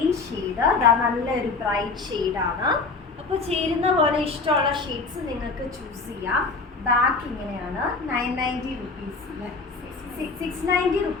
ഷെയ്ഡ്. നല്ലൊരു ബ്രൈറ്റ് ഷെയ്ഡാണ്. അപ്പോൾ ചേരുന്ന പോലെ ഇഷ്ടമുള്ള ഷെയ്ഡ്സ് നിങ്ങൾക്ക് ചൂസ് ചെയ്യാം. ബാക്ക് ഇങ്ങനെയാണ്. 990 റുപ്പീസ്. 690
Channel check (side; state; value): right; quieter; 4.1 dB